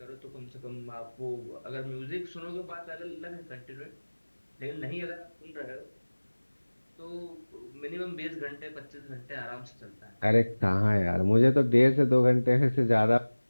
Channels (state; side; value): inverted; both; correlation -1.00